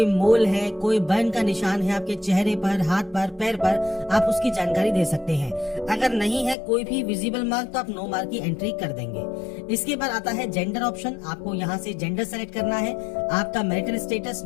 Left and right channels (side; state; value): right; drops out; at 6.6 s